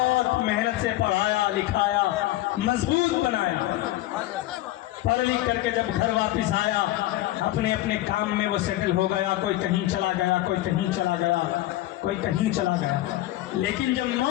محنت سے پڑھایا لکھایا، مضبوط بنایا، پڑھ لکھ کر کے جب گھر واپس آیا اپنے اپنے کام میں وہ سیٹل ہو گیا، کوئی کہیں چلا گیا، کوئی کہیں چلا گیا، کوئی کہیں چلا گیا۔ لیکن جب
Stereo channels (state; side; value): quieter; right; 15.9 dB